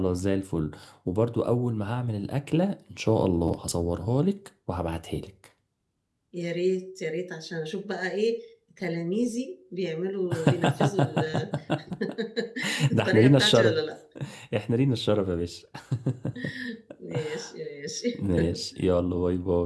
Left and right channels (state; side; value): identical; both; correlation 1.00